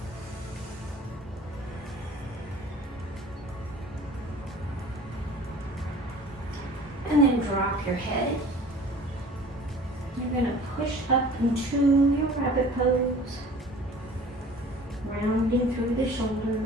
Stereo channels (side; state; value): both; normal; correlation 0.46